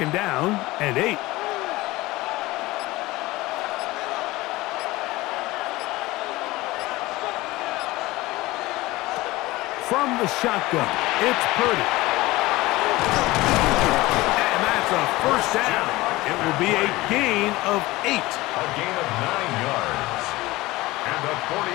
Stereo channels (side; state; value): right; quieter; 19.5 dB